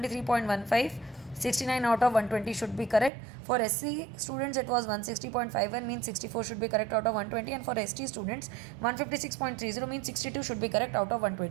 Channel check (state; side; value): drops out; left; at 3.1 s